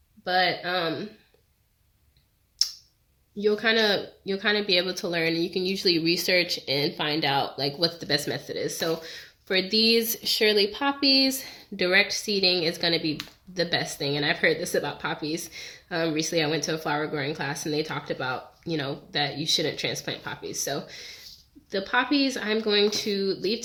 but you'll kind of be able to learn, and you can usually research and find out like what the best method is. So for these Shirley poppies, direct seeding is going to be the best thing. And I've heard this about poppies. Recently I went to a flower growing class and they talked about, that you shouldn't transplant poppies. So the poppies I'm going to leave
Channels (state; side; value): identical; both; correlation 1.00